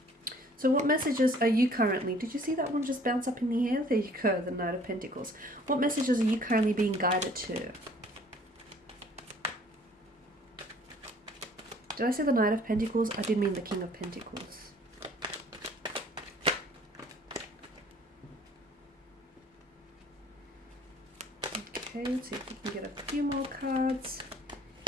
So what messages are you currently, did you see that one just bounce up in the air? There you go, the Knight of Pentacles. What messages are you currently being guided to? Did I say the Knight of Pentacles? I did mean the King of Pentacles. Okay, let's see if we can get a few more cards.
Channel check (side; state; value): both; normal; correlation 0.55